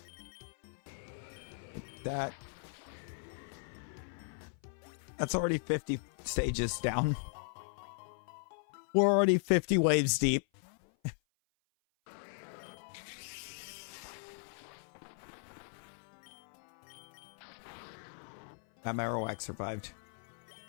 That's already 50 stages down. We're already 50 waves deep. That Marowak survived.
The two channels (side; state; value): right; silent; 53 dB below the other